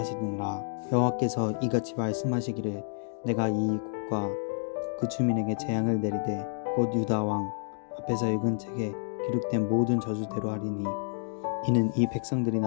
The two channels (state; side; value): silent; right; digital silence